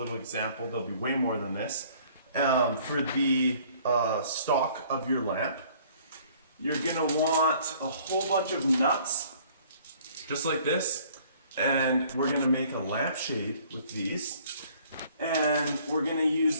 example. There'll be way more than this. For the stock of your lamp. You're going to want a whole bunch of nuts, just like this. And we're going to make a lampshade with these. And we're going to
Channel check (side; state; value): both; inverted; correlation -0.57